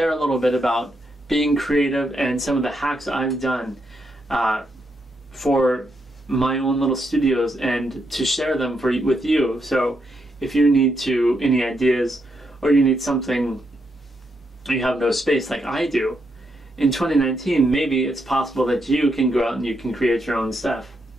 a little bit about being creative and some of the hacks I've done for my own little studios, and to share them with you. So if you need any ideas, or you need something, you have no space like I do, in 2019 maybe it's possible that you can go out and you can create your own stuff.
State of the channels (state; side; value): normal; both; correlation 0.80